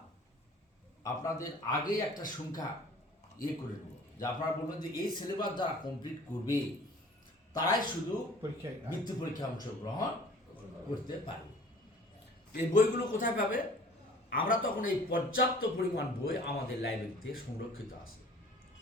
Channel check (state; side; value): normal; both; correlation 0.49